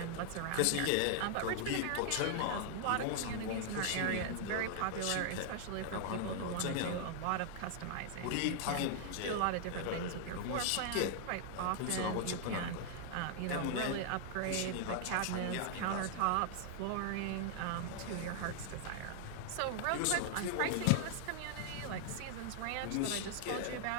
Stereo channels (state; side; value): different; both; correlation 0.00